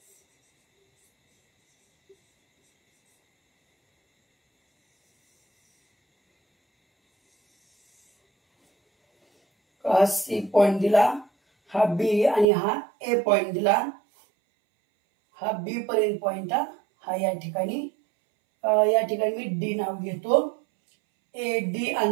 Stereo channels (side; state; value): left; drops out; at 12.5 s